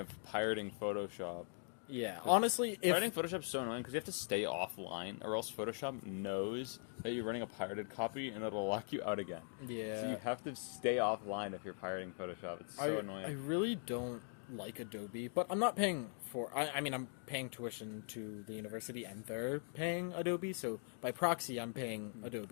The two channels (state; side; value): silent; right; 50 dB below the other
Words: pirating Photoshop. Yeah, honestly, if... Pirating Photoshop's so annoying because you have to stay offline, or else Photoshop knows that you're running a pirated copy and it'll lock you out again. Yeah. So you have to stay offline if you're pirating Photoshop. It's so annoying. I really don't like Adobe, but I'm not paying for... I mean, I'm paying tuition to the university, and they're paying Adobe, so by proxy, I'm paying